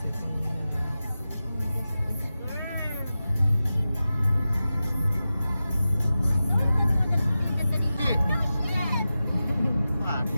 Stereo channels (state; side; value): inverted; both; correlation -0.93